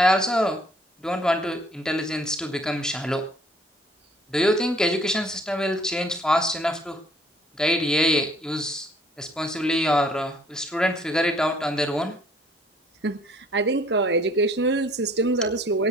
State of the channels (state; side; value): normal; both; correlation 0.59